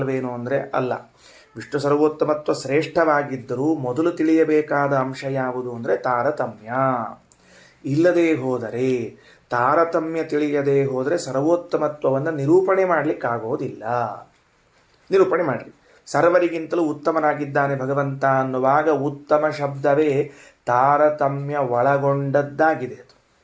ಅಂದರೆ ಅಲ್ಲ. ವಿಷ್ಣು ಸರ್ವೋತ್ತಮತ್ವ ಶ್ರೇಷ್ಠವಾಗಿದ್ದರೂ ಮೊದಲು ತಿಳಿಯಬೇಕಾದ ಅಂಶ ಯಾವುದು ಅಂದರೆ ತಾರತಮ್ಯ. ಇಲ್ಲದೇ ಹೋದರೆ, ತಾರತಮ್ಯ ತಿಳಿಯದೇ ಹೋದರೆ ಸರ್ವೋತ್ತಮತ್ವವನ್ನು ನಿರೂಪಣೆ ಮಾಡಲಿಕ್ಕಾಗೋದಿಲ್ಲ. ನಿರೂಪಣೆ ಮಾಡಲಿ. ಸರ್ವರಿಗಿಂತಲೂ ಉತ್ತಮನಾಗಿದ್ದಾನೆ ಭಗವಂತ ಅನ್ನುವಾಗ ಉತ್ತಮ ಶಬ್ದವೇ ತಾರತಮ್ಯ ಒಳಗೊಂಡದ್ದಾಗಿದೆ. ಅದು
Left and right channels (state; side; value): identical; both; correlation 1.00